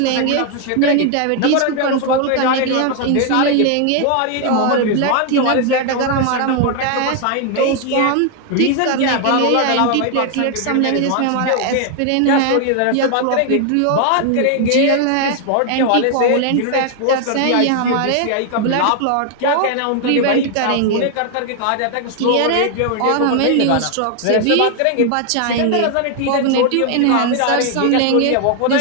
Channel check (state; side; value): different; both; correlation 0.00